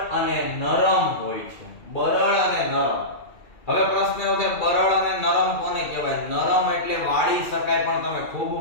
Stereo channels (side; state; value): right; late; 2.3 ms